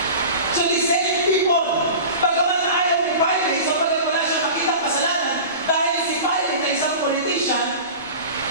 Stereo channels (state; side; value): inverted; both; correlation -0.35